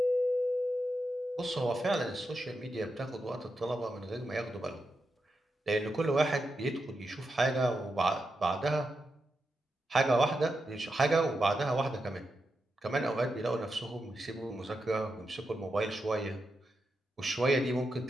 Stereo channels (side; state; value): both; normal; correlation 0.87